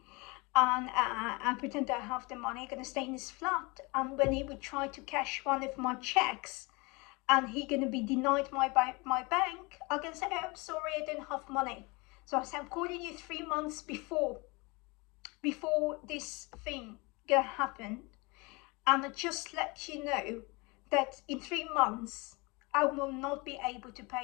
and I pretend that I have the money. I'm gonna stay in this flat, and when he would try to cash one of my checks and he gonna be denied my bank, I'm gonna say, oh, I'm sorry, I don't have money. So I said, I'm calling you 3 months before this thing gonna happen, and I just let you know that in 3 months I will not be able to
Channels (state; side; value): quieter; right; 26.9 dB